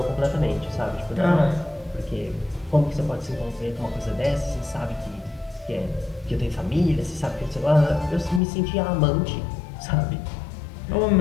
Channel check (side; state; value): right; drops out; at 8.4 s